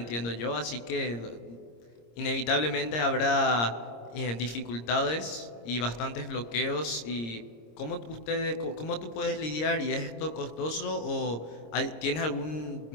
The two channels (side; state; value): right; late; 26 ms